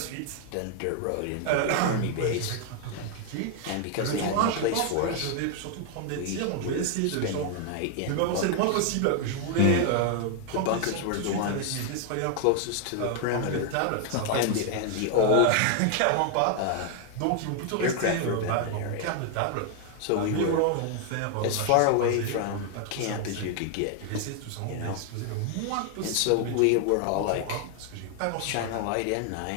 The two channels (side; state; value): both; different; correlation 0.00